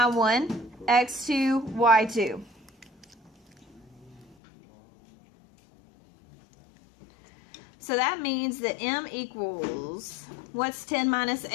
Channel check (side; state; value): right; drops out; at 4.4 s